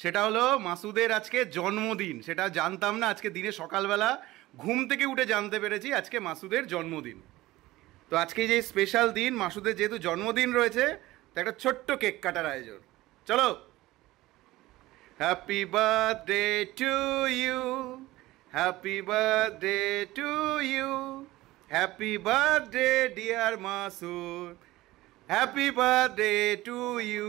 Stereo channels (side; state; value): left; quieter; 17.8 dB